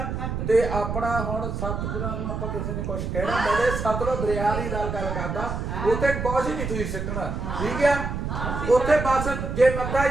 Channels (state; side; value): noise; right; rumble, 4 dB below the sound